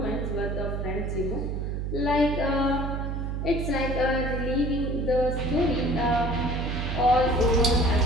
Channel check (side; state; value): right; noise; hum, 2 dB below the sound